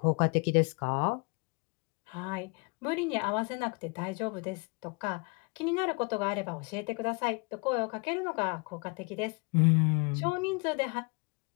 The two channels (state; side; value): quieter; right; 32.1 dB